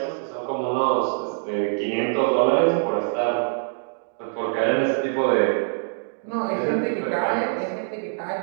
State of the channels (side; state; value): left; silent; digital silence